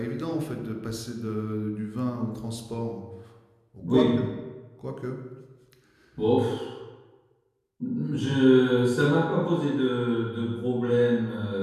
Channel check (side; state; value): both; identical; correlation 1.00